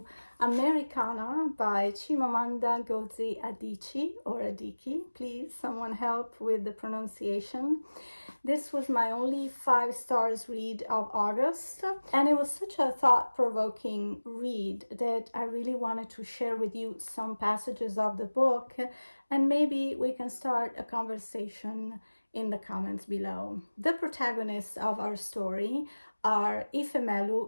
Americanah by Chimamanda Ngozi Adichie or Adichie. Please, someone help with the pronunciation. This was my only 5 stars read of August, and it was such a thought-provoking read that I really wanted to share with you some passages of the book, and maybe we can start a conversation in the comments below. The protagonists of our story are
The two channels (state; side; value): inverted; both; correlation -1.00